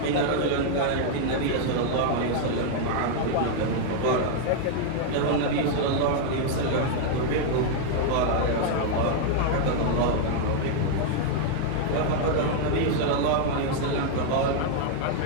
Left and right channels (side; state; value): both; different; correlation 0.00